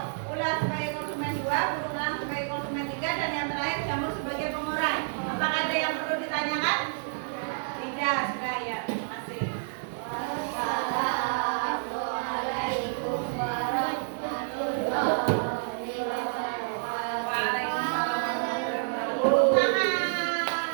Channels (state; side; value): silent; left; digital silence